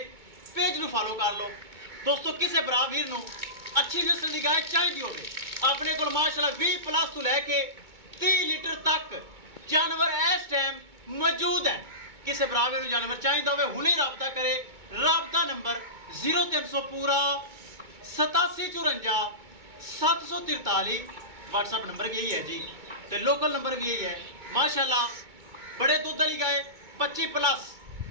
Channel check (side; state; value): left; late; 2.2 ms